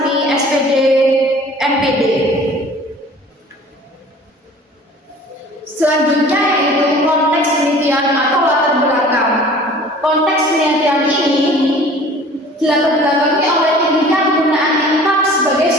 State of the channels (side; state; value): both; normal; correlation 0.47